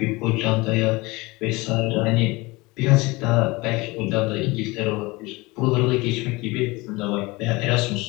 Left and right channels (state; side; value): quieter; right; 23.2 dB